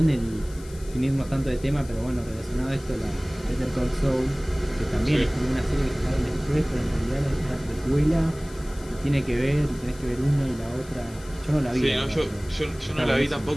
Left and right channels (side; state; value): left; noise; hiss, 21 dB below the sound